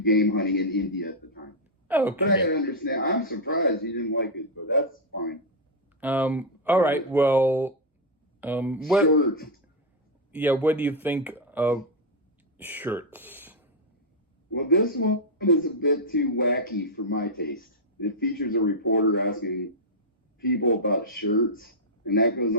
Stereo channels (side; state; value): both; normal; correlation -0.02